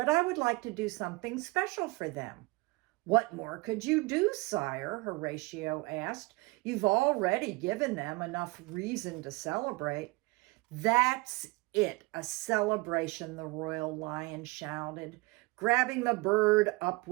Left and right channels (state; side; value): quieter; left; 24.8 dB